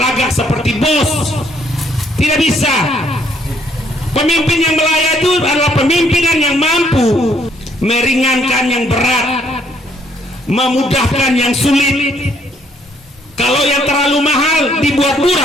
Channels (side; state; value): both; normal; correlation 0.68